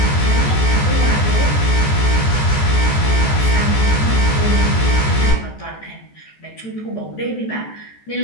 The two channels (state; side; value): late; right; 14 ms